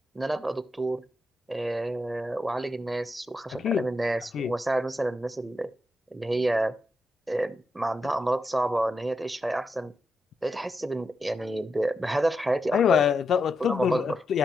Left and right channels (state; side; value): normal; both; correlation 0.85